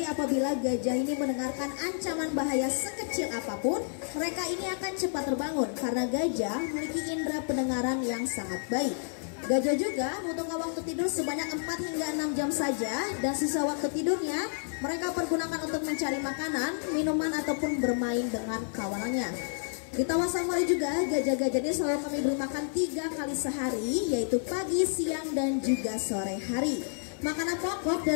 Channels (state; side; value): silent; right; 58 dB below the other